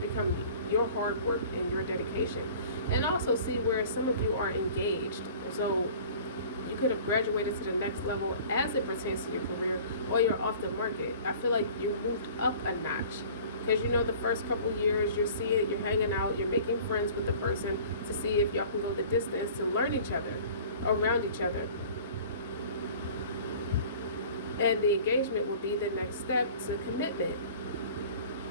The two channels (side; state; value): both; inverted; correlation -0.46